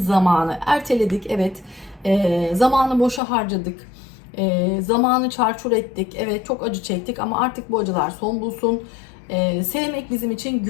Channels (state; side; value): drops out; right; at 3.2 s